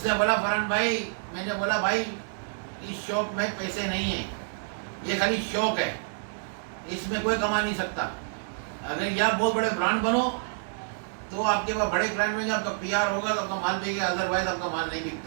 نے بولا فرحان بھائی. میں نے بولا بھائی اس شوق میں پیسے نہیں ہیں، یہ خالی شوق ہے، اس میں کوئی کما نہیں سکتا. اگر یہ آپ بہت بڑے برانڈ بنو تو آپ کے پاس بڑے برانڈ میں آپ کا پی آر ہوگا تو آپ کا مال بکے گا، ادروائز آپ کا مال نہیں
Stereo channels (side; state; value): left; silent; 59 dB below the other